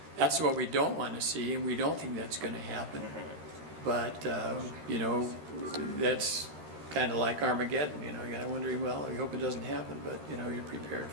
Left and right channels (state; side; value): late; left; 13 ms